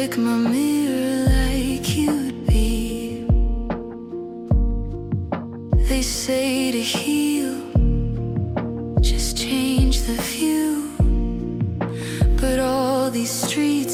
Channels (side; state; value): both; identical; correlation 1.00